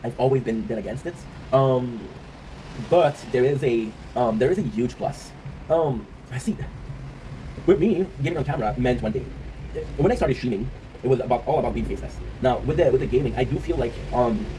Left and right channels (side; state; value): both; identical; correlation 1.00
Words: I've always been dead against it. But there is a huge plus. I see. With me, getting on camera meant one thing. When I started streaming, it was all about being faceless. Now with the gaming, I do feel like I'm